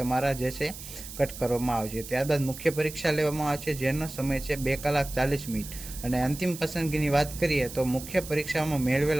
જે છે કટ કરવામાં આવશે. ત્યારબાદ મુખ્ય પરીક્ષા લેવામાં આવશે, જેનો સમય છે 2 કલાક 40 મિનિટ. અને અંતિમ પસંદગીની વાત કરીએ તો મુખ્ય પરીક્ષામાં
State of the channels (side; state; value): right; noise; hiss, 12 dB below the sound